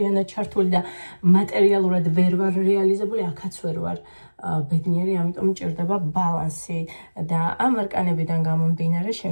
ჩართული და მატერიალურად ვერ ვარ რეალიზებული, აქაც ვერ ვარ ბედნიერი, ამიტომ მჭირდება ბალანსი და ამ არკანებიდან გამომდინარე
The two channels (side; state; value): both; inverted; correlation -1.00